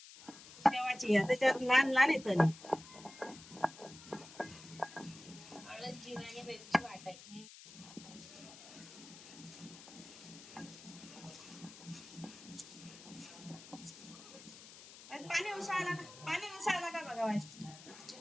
शेवाची आहे, त्याच्यावर लहान लहान येतं ना. हळद, जिरा आणि मिरची वाटायची. पाणी उसायला का बघावायचं.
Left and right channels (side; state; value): left; noise; hiss, 17 dB below the sound